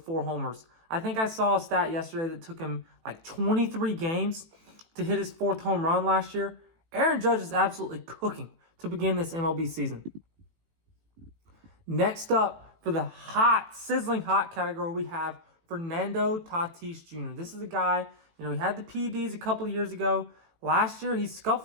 4 homers. I think I saw a stat yesterday that took him like 23 games to hit his 4th home run last year. Aaron Judge is absolutely cooking to begin this MLB season. Next up, for the hot, sizzling hot category, we have Fernando Tatis Jr. This is a guy, he had the PEDs a couple of years ago. Last year, he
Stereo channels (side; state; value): left; late; 18 ms